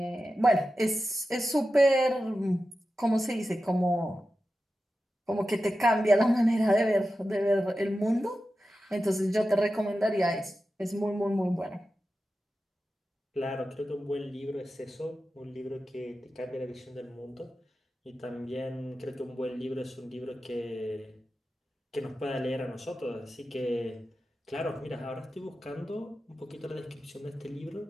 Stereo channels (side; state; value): both; normal; correlation 0.92